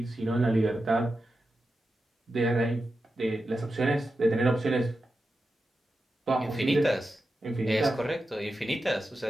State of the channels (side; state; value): both; normal; correlation 0.90